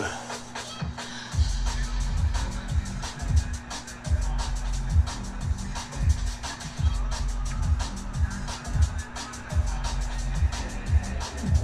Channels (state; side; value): identical; both; correlation 1.00